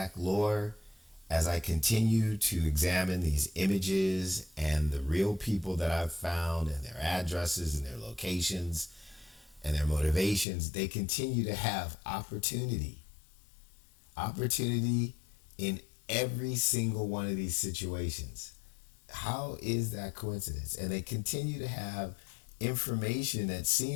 lore, as I continue to examine these images and the real people that I've found and their addresses and their locations and their motivations, they continue to have opportunity. Opportunity in every single one of these situations. How is that coincidence? And they continue to have information that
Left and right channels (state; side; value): drops out; right; at 10.5 s